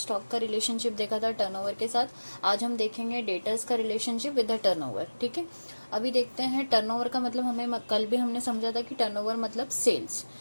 का रिलेशनशिप देखा था टर्नओवर के साथ. आज हम देखेंगे डेटर्स का रिलेशनशिप विद द टर्नओवर. ठीक है, अभी देखते हैं टर्नओवर का मतलब. हमें कल भी हमने समझा था कि टर्नओवर मतलब सेल्स.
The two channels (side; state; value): both; inverted; correlation -1.00